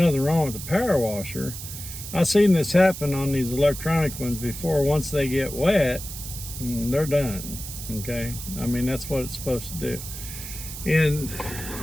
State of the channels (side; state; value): right; noise; hiss, 10 dB below the sound